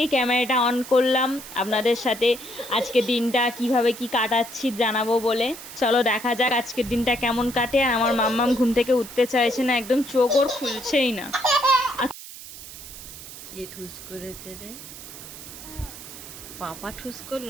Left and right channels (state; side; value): noise; right; hiss, 14 dB below the sound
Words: ক্যামেরাটা অন করলাম আপনাদের সাথে আজকের দিনটা কিভাবে কি কাটাচ্ছি জানাবো বলে। চলো দেখা যাক আজকের দিনটা কেমন কাটে। আর আমার মাম্মাম ঘুম থেকে উঠতে চাইছে না, একদম চোখ ওর খুলছেই না। কে ঠুস করেছে রে? পাপা ঠুস